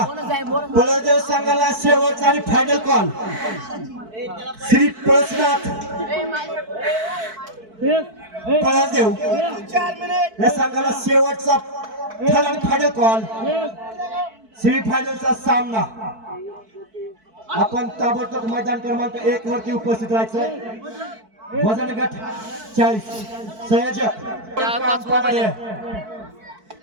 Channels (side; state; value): left; late; 4.6 ms